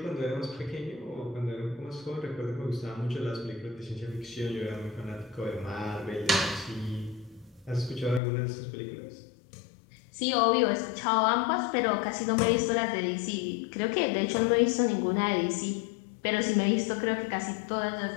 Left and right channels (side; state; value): right; drops out; at 8.2 s